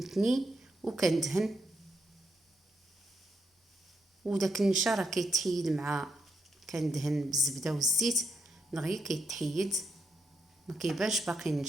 وكندهن. وداك النشا راه كيتحيد مع كندهن بالزبده والزيت دغيا كيتحيد، ما كيبانش باقي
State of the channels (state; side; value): normal; both; correlation 0.81